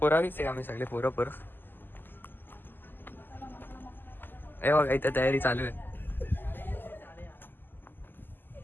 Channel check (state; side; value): late; right; 0.093 ms